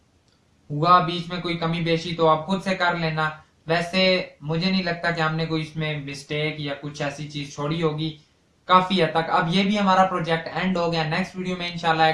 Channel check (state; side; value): identical; both; correlation 1.00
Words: हुआ बीच में कोई कमी बेशी तो आप खुद से कर लेना। वैसे मुझे नहीं लगता कि हमने कोई इसमें मिस्टेक या कुछ ऐसी चीज छोड़ी होगी, काफी हद तक। अब ये भी हमारा प्रोजेक्ट एंड हो गया। नेक्स्ट वीडियो में इंशाल्लाह